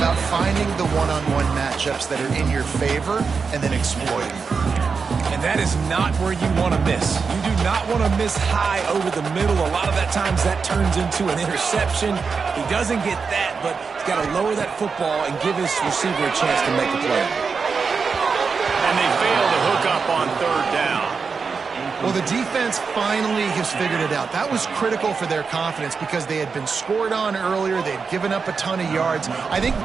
finding the one-on-one matchups that are in your favor and then exploiting. And that is not where you want to miss. You do not want to miss high over the middle. A lot of that times that turns into an interception. He doesn't get that, but he's got to lower that football and give his receiver a chance to make a play. And they fail to hook up on third down. Well, the defense finally has figured it out. That was critical for their confidence because they had been scored on earlier. They'd given up a ton of yards. I think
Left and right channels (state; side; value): quieter; left; 5.2 dB